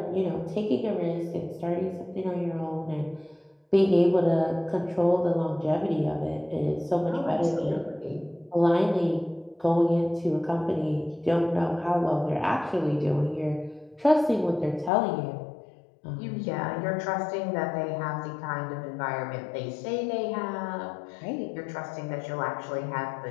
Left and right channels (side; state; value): right; drops out; at 14.9 s